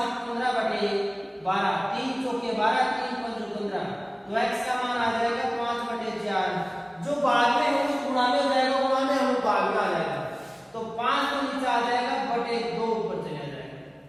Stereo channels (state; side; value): identical; both; correlation 1.00